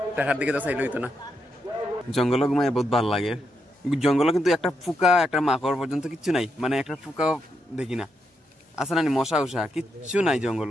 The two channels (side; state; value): both; normal; correlation 0.82